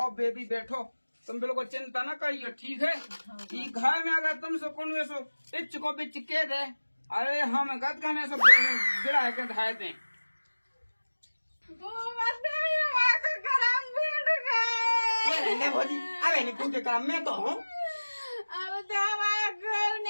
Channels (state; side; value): inverted; both; correlation -1.00